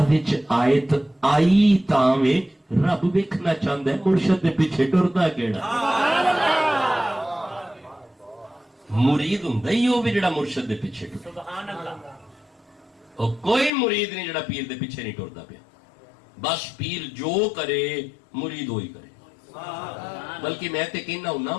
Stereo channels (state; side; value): drops out; right; at 13.7 s